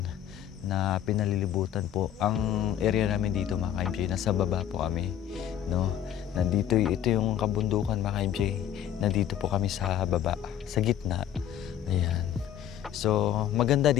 na pinalilibutan po. Ang area namin dito mga ka-MJ, nasa baba po kami. No? Nandito, ito yung kabundukan mga ka-MJ. Nandito po kami sa baba, sa gitna. Ayan. So, maganda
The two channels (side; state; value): right; quieter; 10.4 dB